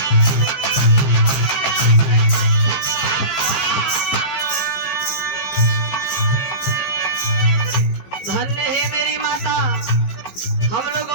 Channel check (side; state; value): right; late; 15 ms